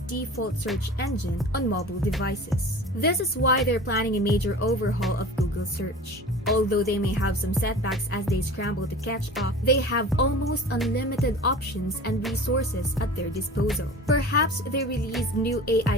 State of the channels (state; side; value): normal; both; correlation 0.38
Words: search engine on mobile devices. This is why they're planning a major overhaul of Google Search. Although they may have some setbacks as they scramble to catch up, they have almost unlimited options and resources at their disposal. Perhaps they release new